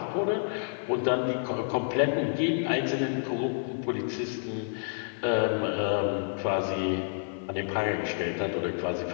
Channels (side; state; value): right; silent; 58 dB below the other